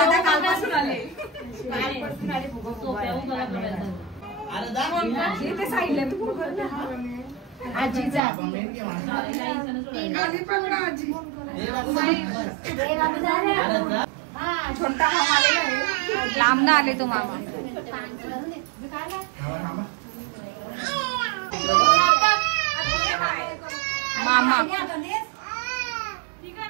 लांब ना आले तो मामा. मामा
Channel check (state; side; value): drops out; left; at 8.2 s